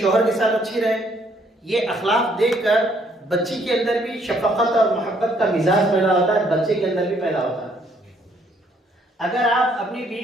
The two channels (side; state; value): both; normal; correlation 0.67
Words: के साथ अच्छी रहे। ये अखलाक देखकर बच्ची के अंदर भी शफकत और मोहब्बत का मिजाज पैदा होता है, बच्चे के अंदर भी पैदा होता है। अगर आप अपनी